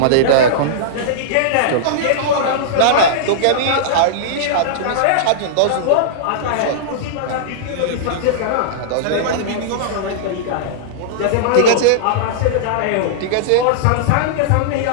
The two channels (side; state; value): both; different; correlation -0.02